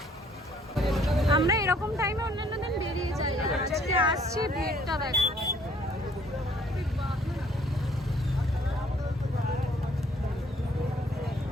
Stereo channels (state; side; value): normal; both; correlation 0.61